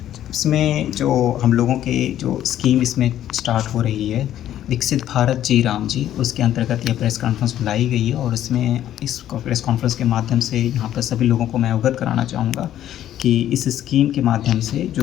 इसमें जो हम लोगों के जो स्कीम इसमें स्टार्ट हो रही है, विकसित भारत जी राम जी, उसके अंतर्गत यह प्रेस कॉन्फ्रेंस बुलाई गई है और इसमें इस प्रेस कॉन्फ्रेंस के माध्यम से यहाँ पर सभी लोगों को मैं अवगत कराना चाहूँगा कि इस स्कीम के माध्यम से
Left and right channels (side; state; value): right; quieter; 11.8 dB